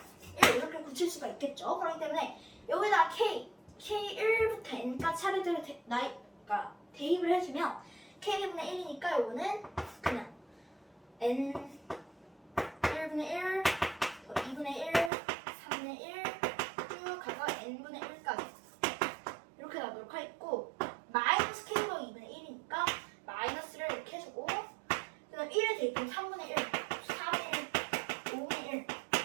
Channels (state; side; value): drops out; left; at 15.1 s